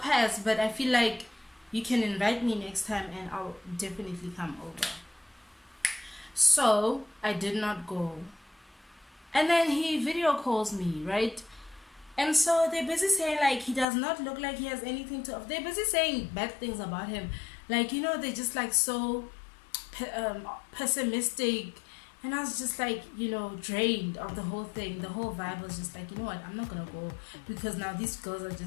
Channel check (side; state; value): right; drops out; at 13.9 s